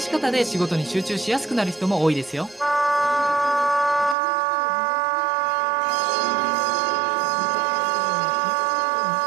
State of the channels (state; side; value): drops out; left; at 4.2 s